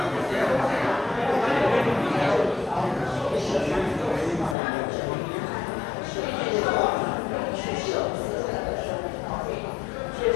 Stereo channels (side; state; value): right; drops out; at 4.5 s